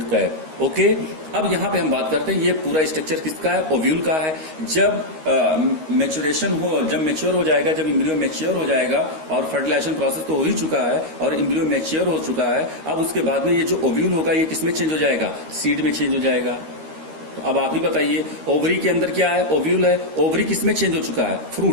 cap, okay. अब यहां पे हम बात करते हैं, ये पूरा स्ट्रक्चर किसका है? ओव्यूल का है। जब मैच्योरेशन हो, जब मैच्योर हो जाएगा, जब एम्ब्रियो मैच्योर हो जाएगा, और फर्टिलाइजेशन प्रोसेस तो हो ही चुका है और एम्ब्रियो मैच्योर हो चुका है, अब उसके बाद में ये जो ओव्यूल होगा ये किसमें चेंज हो जाएगा? सीड में चेंज हो जाएगा। तो अब आप ही बताइए, ओवरी के अंदर क्या है? ओव्यूल है। ओवरी किसमें चेंज हो चुका है?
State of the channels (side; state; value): left; late; 13 ms